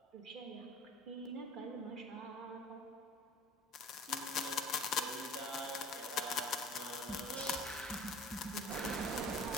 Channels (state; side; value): normal; both; correlation 0.45